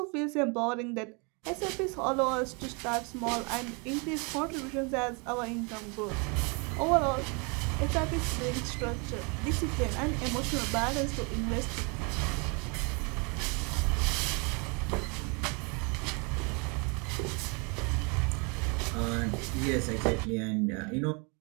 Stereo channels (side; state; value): left; quieter; 32.7 dB